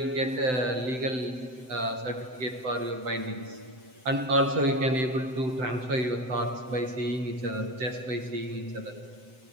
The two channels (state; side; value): late; left; 7.8 ms